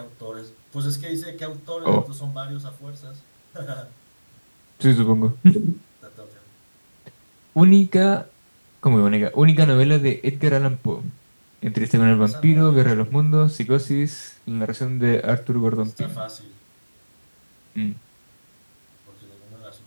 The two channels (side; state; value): both; inverted; correlation -1.00